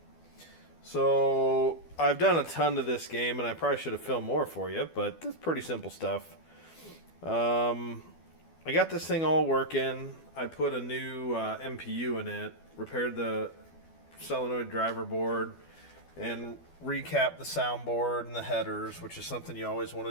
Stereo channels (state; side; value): late; right; 12 ms